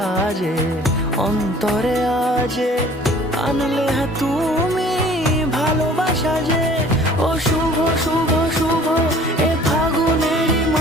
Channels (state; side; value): normal; both; correlation 0.51